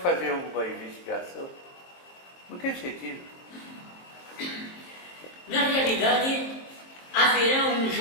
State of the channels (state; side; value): late; right; 23 ms